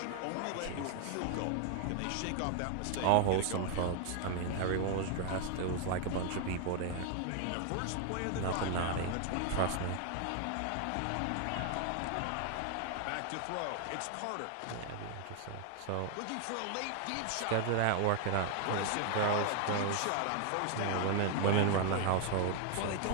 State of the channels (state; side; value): different; both; correlation 0.00